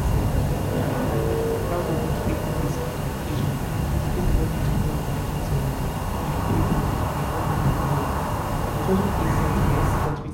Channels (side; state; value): both; identical; correlation 1.00